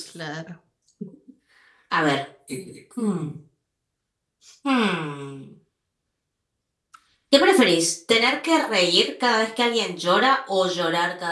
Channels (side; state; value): both; identical; correlation 1.00